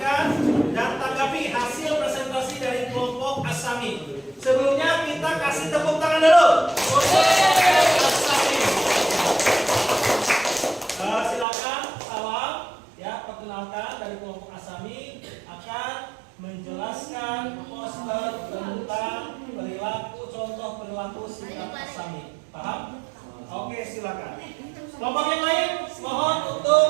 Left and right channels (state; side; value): drops out; left; at 11.5 s